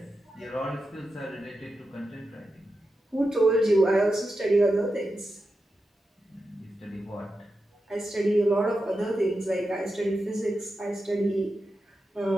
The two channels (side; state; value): both; normal; correlation 0.89